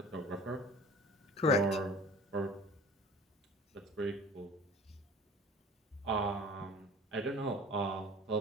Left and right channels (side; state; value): both; normal; correlation 0.43